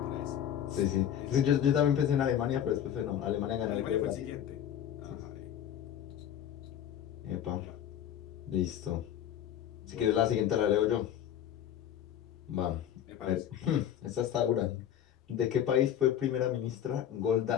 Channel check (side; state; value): right; quieter; 10.2 dB